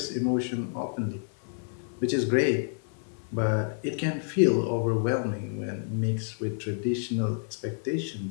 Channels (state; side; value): silent; right; 59 dB below the other